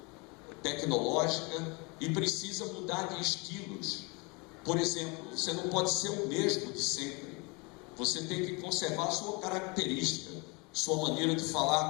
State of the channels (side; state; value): right; quieter; 29.3 dB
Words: tecnológica e precisa mudar de estilos. Por exemplo, você não pode ser o mesmo de sempre. Você tem que conservar a sua característica. Sua maneira de